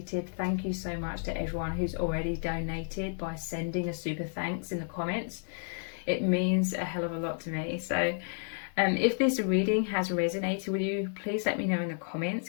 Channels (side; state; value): right; silent; 57 dB below the other